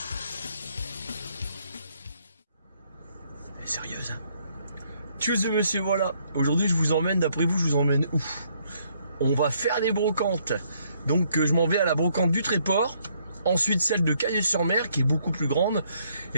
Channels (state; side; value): inverted; both; correlation -0.69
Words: Elle est sérieuse, hein? Tchuss monsieur, voilà. Aujourd'hui, je vous emmène, d'après vous, je vous emmène où? On va faire des brocantes. Donc, je m'en vais à la brocante du Tréport. Ensuite, celle de Caillé-sur-Mer, qui est beaucoup plus grande.